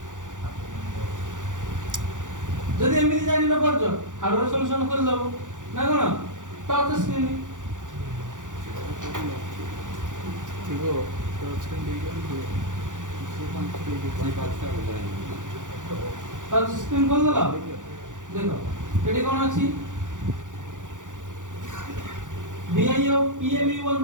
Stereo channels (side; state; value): left; late; 0.87 ms